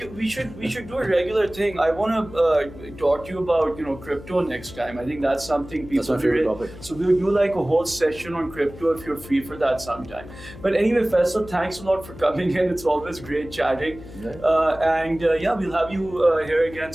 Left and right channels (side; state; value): left; noise; hum, 16 dB below the sound